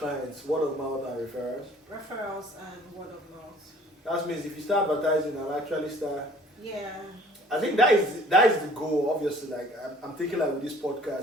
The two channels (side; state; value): both; normal; correlation 0.53